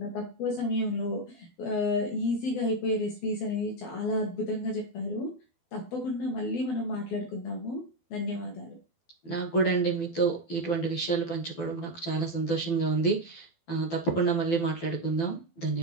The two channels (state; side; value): late; right; 12 ms